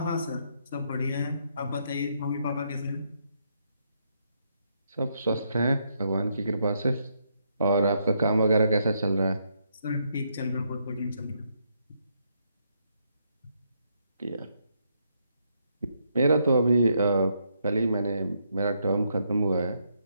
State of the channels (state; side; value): inverted; both; correlation -0.76